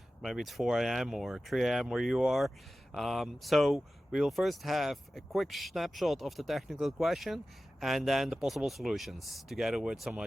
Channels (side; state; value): both; normal; correlation 0.95